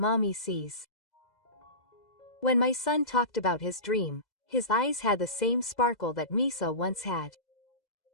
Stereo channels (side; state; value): right; late; 2.0 ms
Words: sees. When my son talked about his dream, his eyes had the same sparkle that Misa once had.